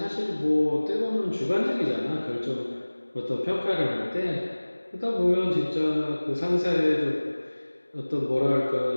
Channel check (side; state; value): both; inverted; correlation -1.00